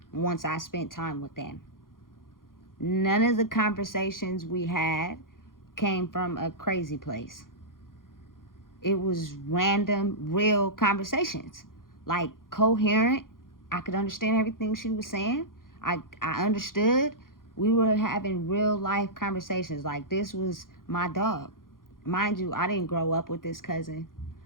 once I spent time with them. None of the conversations we had came from a crazy place. It was random, real conversations. Like, coherent. I could understand everything she was saying. I understood. We were having real life conversations. Like, this was my dog. Mind you, I didn't grow up with this cousin.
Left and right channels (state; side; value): late; right; 0.91 ms